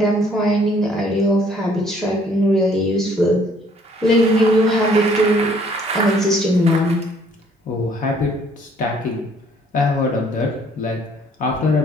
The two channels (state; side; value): normal; both; correlation 0.61